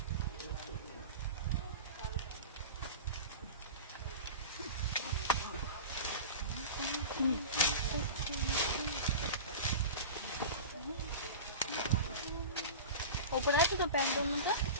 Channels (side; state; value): both; inverted; correlation -0.30